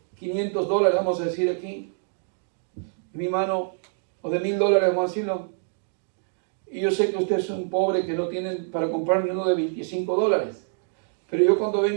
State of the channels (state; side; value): silent; left; digital silence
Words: $500, vamos a decir aquí, en mi mano, o de $1,000, vamos a decirlo. Y yo sé que usted es un pobre que no tiene para comprar ni uno de $25. Pero yo cuando